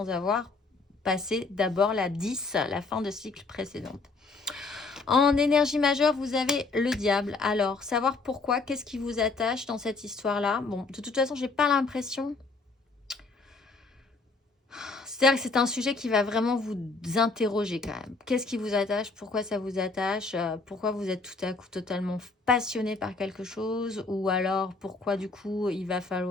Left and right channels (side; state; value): right; quieter; 3.8 dB